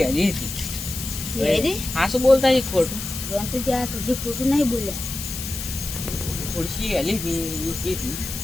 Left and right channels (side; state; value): left; noise; hiss, 7 dB below the sound